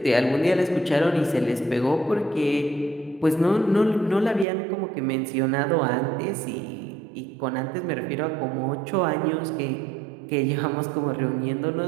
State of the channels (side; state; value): left; drops out; at 4.5 s